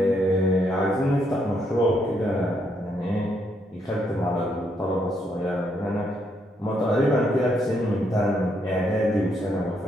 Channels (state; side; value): normal; both; correlation 0.75